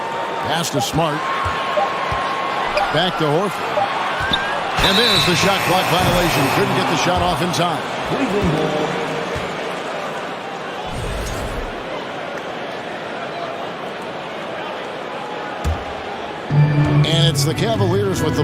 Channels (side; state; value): both; identical; correlation 1.00